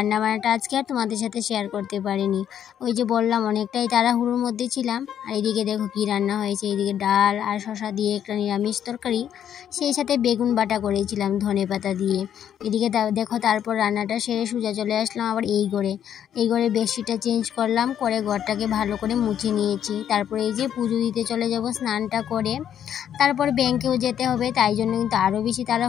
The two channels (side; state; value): right; quieter; 9.6 dB